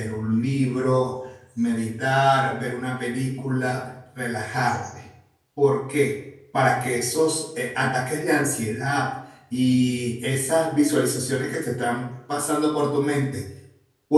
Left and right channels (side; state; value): both; identical; correlation 1.00